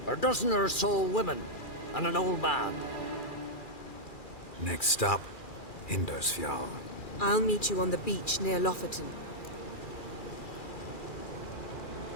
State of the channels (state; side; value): late; right; 2.4 ms